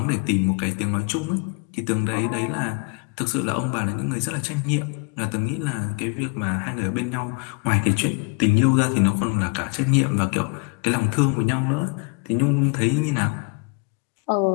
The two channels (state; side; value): quieter; right; 33.1 dB